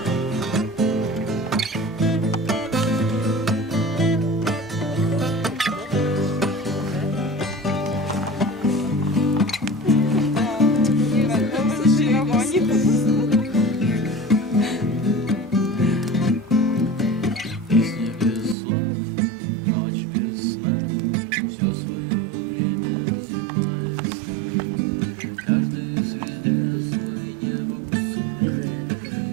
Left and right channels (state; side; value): drops out; left; at 18.6 s